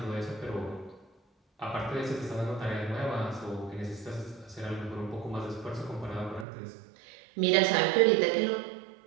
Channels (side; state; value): left; drops out; at 6.5 s